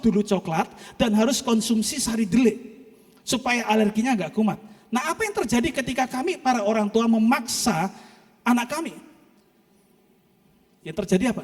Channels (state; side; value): identical; both; correlation 1.00